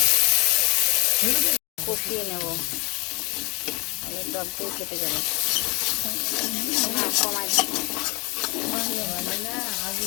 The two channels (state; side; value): quieter; right; 27.9 dB